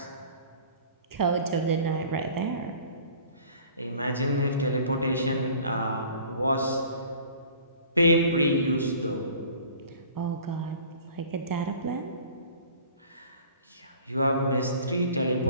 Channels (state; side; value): inverted; both; correlation -0.48